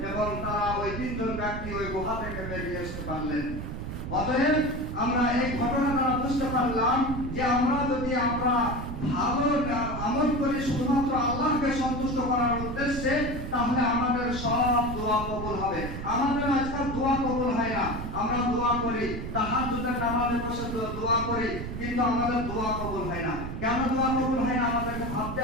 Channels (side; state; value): right; noise; rumble, 6 dB below the sound